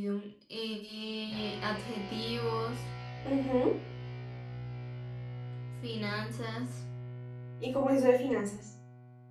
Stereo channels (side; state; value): both; identical; correlation 1.00